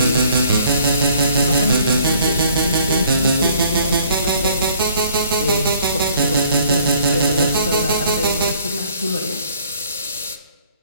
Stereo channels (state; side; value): inverted; both; correlation -0.59